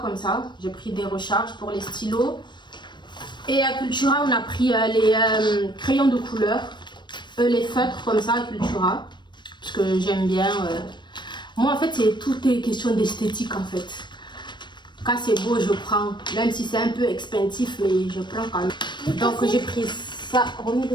comme ça. J'ai pris des recharges pour les stylos. Et à Cultura, on a pris les crayons de couleur, les feutres comme ça à Cultura. Parce que j'aime bien. Moi, en fait, tout est question d'esthétique en fait. Quand c'est beau, je prends. Même si c'est un peu expensive, mais je prends quand même. Donc j'ai pris ça.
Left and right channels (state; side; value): late; right; 0.22 ms